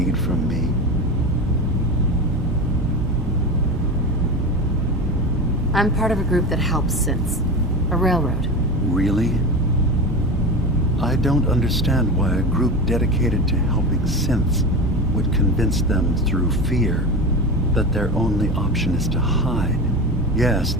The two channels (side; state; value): both; normal; correlation 0.26